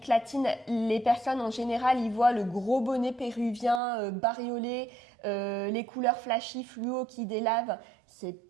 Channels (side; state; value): left; drops out; at 3.8 s